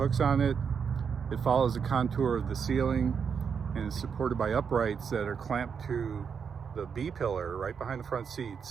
on it. It follows the contour of the ceiling and is supported by uprights that are clamped to the B-pillar right behind the front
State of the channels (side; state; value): left; quieter; 6.6 dB